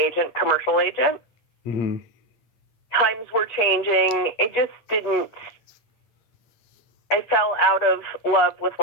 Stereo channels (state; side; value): late; right; 8.6 ms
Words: commercial agent. Mm-hmm. Times were changing. It just didn't. I fell out of love with